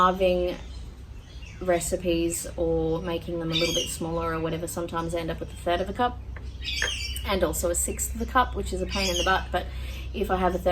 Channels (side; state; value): both; identical; correlation 1.00